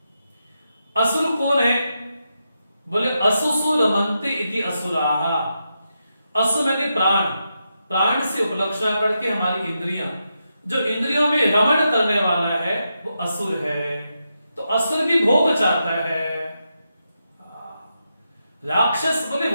असुर कौन है, बोले असुसु रमन्ते इति असुराहा। असु माने प्राण, प्राण से उपलक्षण करके हमारी इंद्रियां, जो इंद्रियों में रमण करने वाला है वो असुर है। तो असुर भी भोग चाहता है। राक्षस बोले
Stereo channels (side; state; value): both; inverted; correlation -0.86